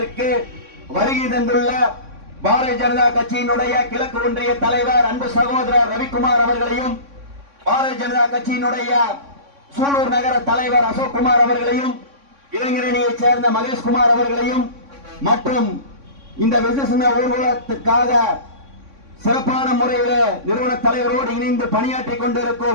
வருகை தந்துள்ள பாரதிய ஜனதா கட்சியினுடைய கிழக்கு ஒன்றிய தலைவர் அன்பு சகோதரர் ரவிக்குமார் அவர்களையும், பாரதிய ஜனதா கட்சியினுடைய சூலூர் நகர தலைவர் அசோக்குமார் அவர்களையும், இளைஞரணியைச் சேர்ந்த மகேஷ்குமார் அவர்களையும் மற்றும் இந்த விசேஷ ஊர்வலத்துக்காக சிறப்பான முறையில் நிறுவன தலைவரோடு இணைந்து பணியாற்றிக்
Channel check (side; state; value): left; late; 3.6 ms